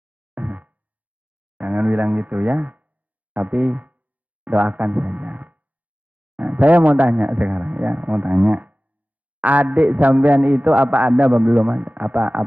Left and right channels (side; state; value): left; late; 0.074 ms